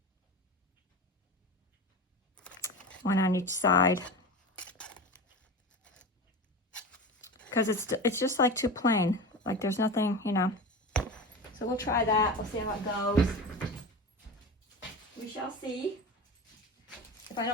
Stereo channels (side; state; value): both; normal; correlation 0.28